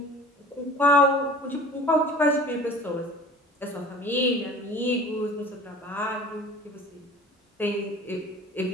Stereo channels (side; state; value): both; normal; correlation 0.43